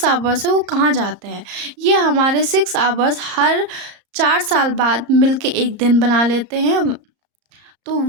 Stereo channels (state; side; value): late; left; 34 ms